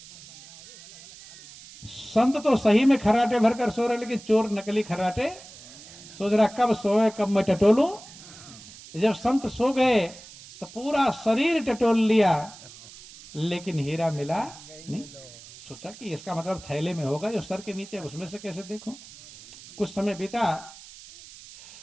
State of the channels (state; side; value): noise; right; hiss, 18 dB below the sound